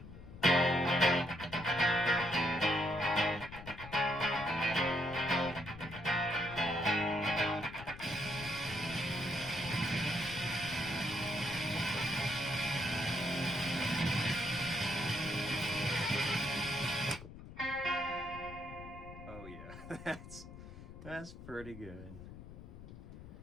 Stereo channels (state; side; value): noise; left; rumble, 14 dB below the sound